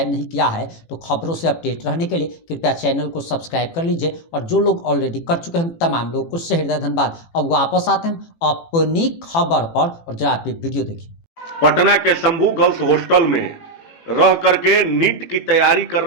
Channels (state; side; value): late; right; 18 ms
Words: नहीं किया है तो खबरों से अपडेट रहने के लिए कृपया चैनल को सब्सक्राइब कर लीजिए। और जो लोग ऑलरेडी कर चुके हैं तमाम लोगों को उससे हृदय धन्यवाद। अब वापस आते हैं अपनी खबर पर और जरा आप ये वीडियो देखिए। पटना के शंभू गर्ल्स हॉस्टल में रह करके नीट की तैयारी कर